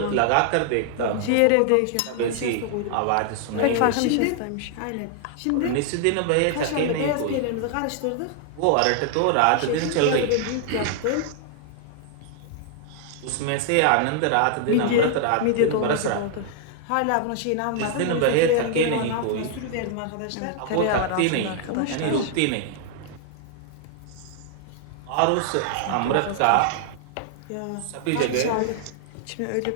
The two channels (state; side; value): different; both; correlation 0.00